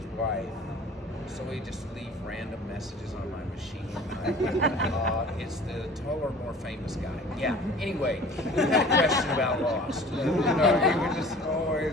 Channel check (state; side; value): normal; both; correlation 0.45